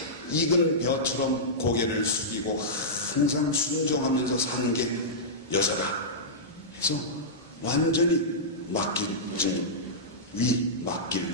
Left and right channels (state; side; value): normal; both; correlation -0.14